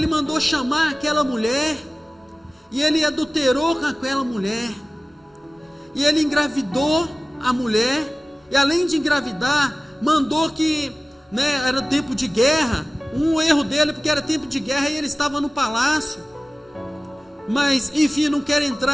mandou chamar aquela mulher, e ele adulterou com aquela mulher, e ele engravidou a mulher, e além de engravidar, mandou que, né, era tempo de guerra. Um erro dele, porque era tempo de guerra e ele estava no palácio. Mas, enfim, não quero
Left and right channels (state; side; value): normal; both; correlation 0.97